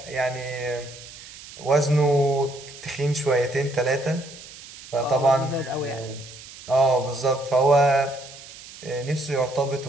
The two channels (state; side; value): noise; right; hiss, 17 dB below the sound